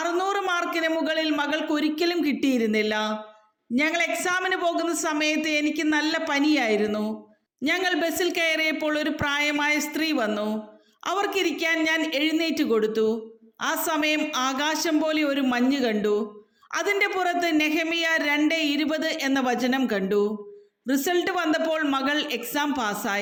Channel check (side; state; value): both; identical; correlation 1.00